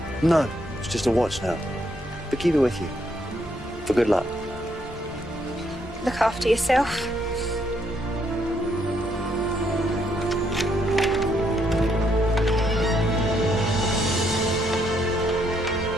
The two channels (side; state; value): both; normal; correlation 0.73